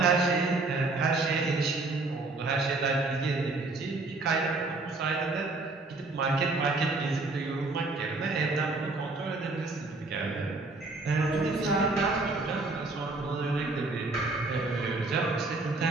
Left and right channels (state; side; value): quieter; left; 3.4 dB